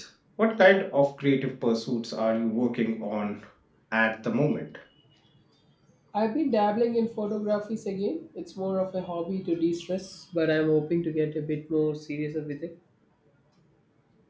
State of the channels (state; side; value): identical; both; correlation 1.00